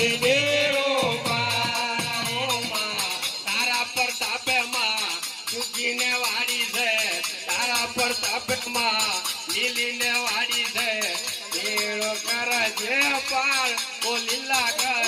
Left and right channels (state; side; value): identical; both; correlation 1.00